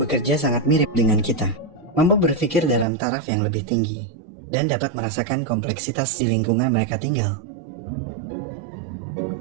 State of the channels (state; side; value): drops out; left; at 2.9 s